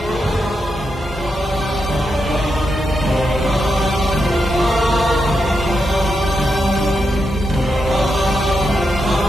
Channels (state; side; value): normal; both; correlation 0.85